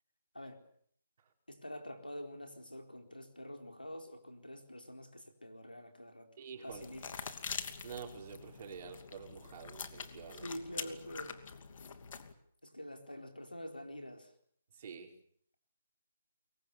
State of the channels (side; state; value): both; inverted; correlation -0.72